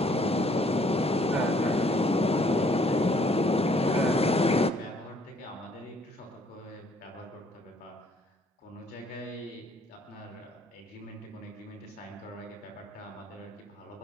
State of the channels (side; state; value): both; normal; correlation 0.63